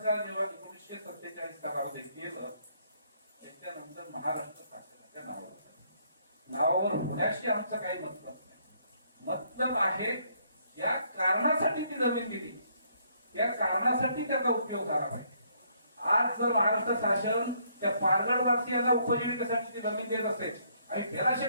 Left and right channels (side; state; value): both; inverted; correlation -0.69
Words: जेव्हा 1947 सालामध्ये केलं त्याच्यानंतर महाराष्ट्र शासनाच्या नावावर होण्याशी आमचं काही मतलब नाही. मतलब आहे या कारणासाठी ती जमीन दिली, त्या कारणासाठी त्याचा उपयोग झाला पाहिजे. आज जर महाराष्ट्र शासन त्या पारगडवासियांना उपजीविकेसाठी ती जमीन देत असेल आणि त्याला